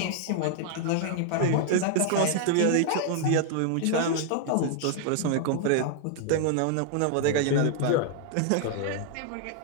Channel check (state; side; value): different; both; correlation 0.00